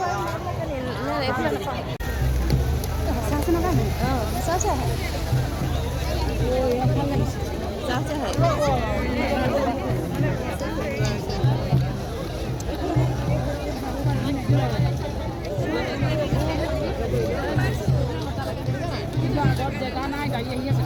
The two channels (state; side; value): identical; both; correlation 1.00